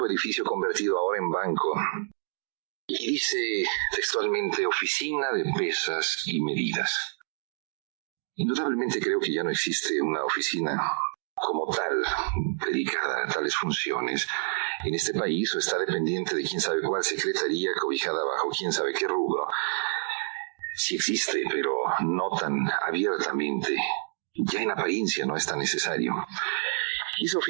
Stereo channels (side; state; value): left; silent; digital silence